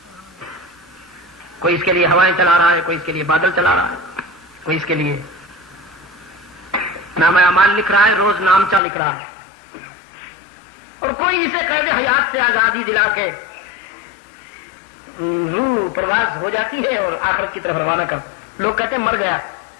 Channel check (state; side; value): drops out; right; at 8.8 s